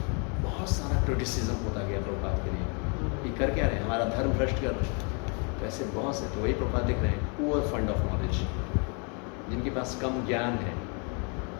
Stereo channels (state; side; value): quieter; right; 36.1 dB